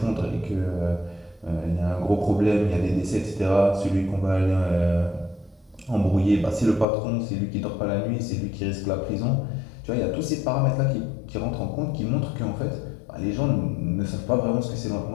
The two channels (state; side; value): drops out; right; at 6.9 s